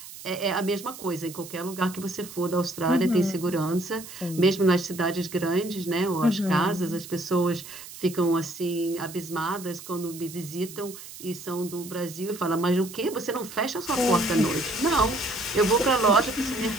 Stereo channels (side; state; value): right; noise; hiss, 14 dB below the sound